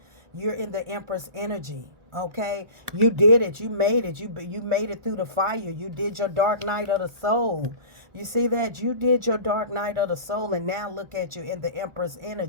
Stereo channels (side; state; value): left; late; 1.2 ms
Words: You're in the Empress energy. Okay, you did it. You made it. You made it through the fire. You did your dark night of the soul. You see that? You did your dark night of the soul, and now look at you in the Empress